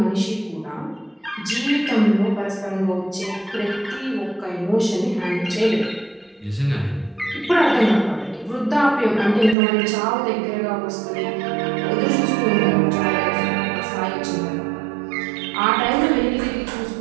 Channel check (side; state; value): left; drops out; at 9.6 s